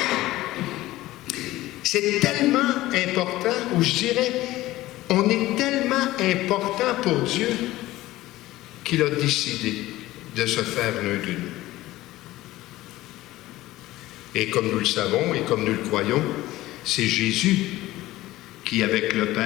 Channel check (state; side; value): quieter; right; 16.8 dB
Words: C'est tellement important, ou je dirais, on est tellement important pour Dieu qu'il a décidé de se faire l'un de nous. Et comme nous le savons et comme nous le croyons, c'est Jésus qui, avec le